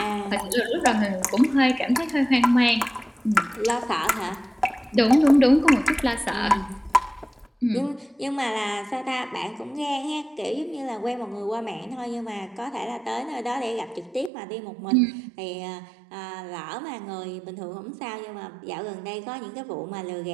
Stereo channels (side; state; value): left; drops out; at 14.3 s